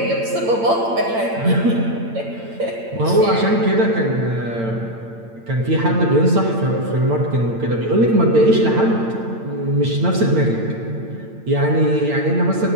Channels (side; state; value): left; late; 8.8 ms